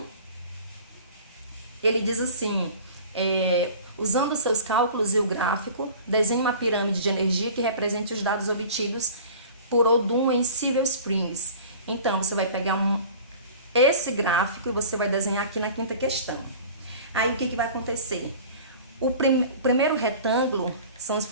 ele diz assim: usando seus cálculos e o gráfico, desenhe uma pirâmide de energia que represente os dados obtidos por Odum em Silver Springs. Então, você vai pegar esse gráfico e você vai desenhar aqui na quinta questão. Aí, o que vai acontecer? O primeiro retângulo são os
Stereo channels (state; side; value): inverted; both; correlation -0.42